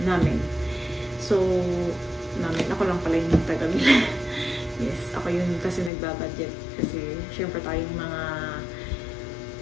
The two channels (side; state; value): right; drops out; at 5.9 s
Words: namin. So, ako lang pala yung taga-bila. Yes, ako yun kasi nagbabudget. Kasi, syempre tayong mga